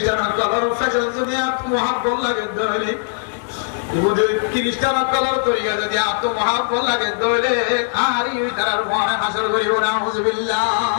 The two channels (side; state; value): right; silent; digital silence